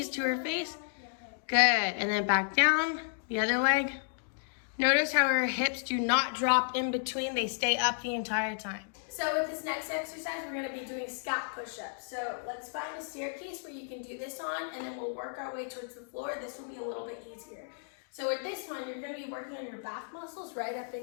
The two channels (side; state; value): right; silent; digital silence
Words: to her face. Good. And then back down. The other leg. Notice how her hips do not drop in between. They stay up the entire time. So with this next exercise, we're gonna be doing scap push-ups. So let's find a staircase where you can do this on, and then we'll work our way towards the floor. This will be a little bit easier. So with this one, you're gonna be working on your back muscles right up